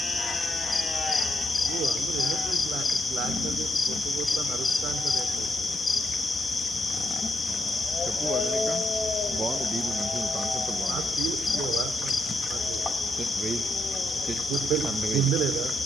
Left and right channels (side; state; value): both; normal; correlation 0.79